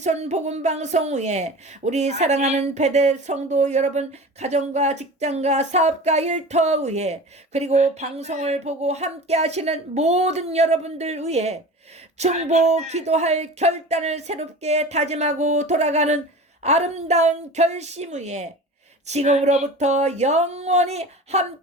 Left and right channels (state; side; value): normal; both; correlation 0.35